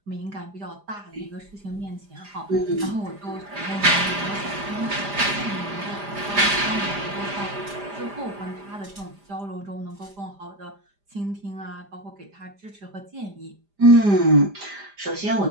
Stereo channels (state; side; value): late; left; 5.0 ms